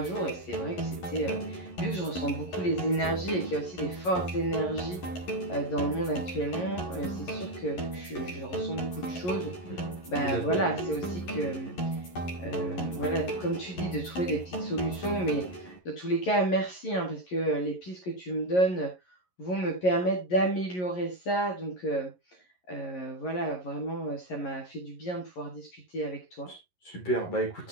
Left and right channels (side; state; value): right; late; 11 ms